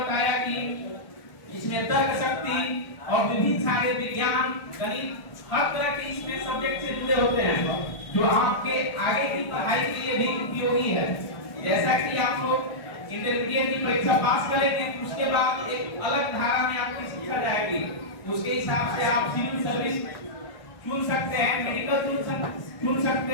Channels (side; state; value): right; late; 1.5 ms